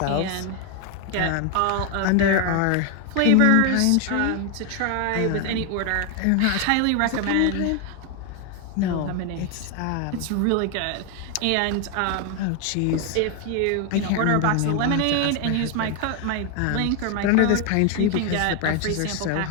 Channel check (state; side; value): different; both; correlation 0.01